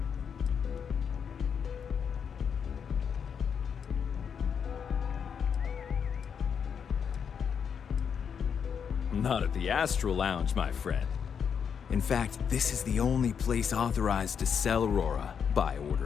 Not at the Astral Lounge, my friend. In fact, this is the only place authorized to sell Aurora by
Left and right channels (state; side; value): quieter; right; 7.2 dB